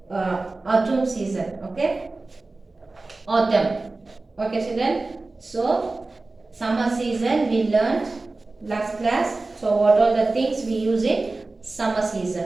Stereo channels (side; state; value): left; quieter; 3.3 dB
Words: autumn season. Okay, autumn. Okay, children. So summer season we learned last class. So what are the things we use in summer